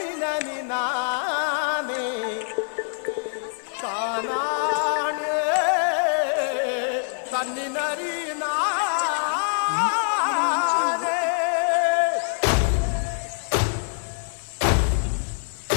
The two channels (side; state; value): right; silent; digital silence